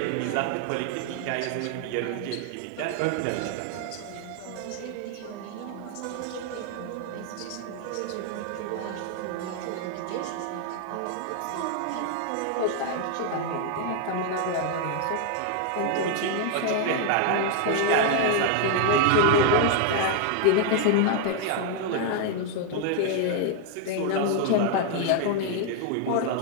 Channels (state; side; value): different; both; correlation 0.00